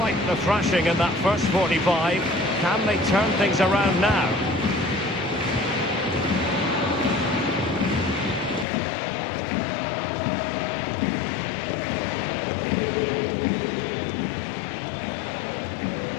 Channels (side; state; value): right; drops out; at 8.7 s